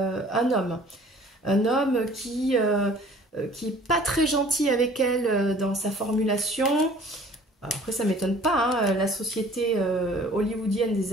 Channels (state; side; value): normal; both; correlation 0.51